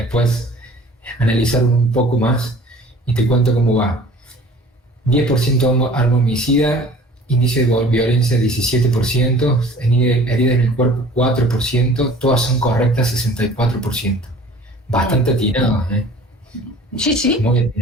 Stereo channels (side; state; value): both; normal; correlation 0.47